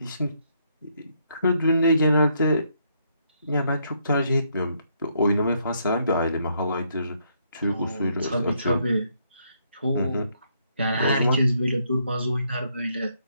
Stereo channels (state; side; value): inverted; both; correlation -0.74